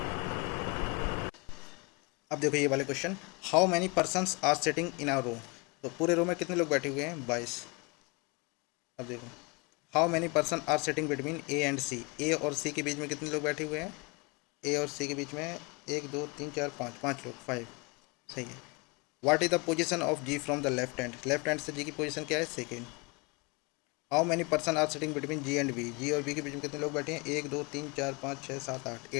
अब देखो ये वाले question, how many persons are sitting in a row. तो पूरे रो में कितने लोग बैठे हुए हैं, 22। अब देखो, how many person are sitting between A and C. A और सी के बीच में कितने लोग बैठे हुए हैं, ए और सी के बीच में 1 2 3 4 5, 5 लोग, 5, सही है। What is the position of G from the left hand. Left hand से जी की पोजीशन क्या है, second. How many person are sitting between G and B. G और बी के बीच में कितने लोग बैठे हैं, 1 2 3 4 5 6 7 8,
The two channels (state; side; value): quieter; right; 29.2 dB